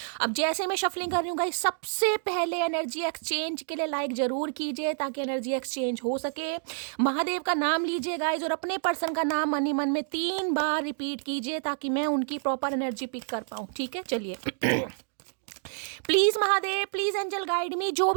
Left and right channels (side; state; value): left; silent; digital silence